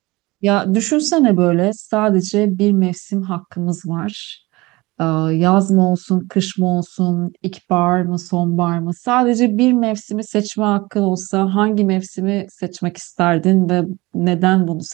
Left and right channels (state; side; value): quieter; left; 21.8 dB